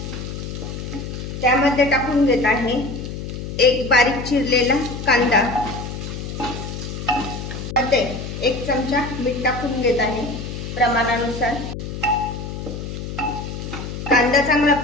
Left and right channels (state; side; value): noise; left; hum, 7 dB below the sound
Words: त्यामध्ये टाकून घेत आहे 1 बारीक चिरलेला कांदा, मध्ये 1 चमचा मीठ टाकून घेत आहे प्रमाणानुसार. कांदा चांगला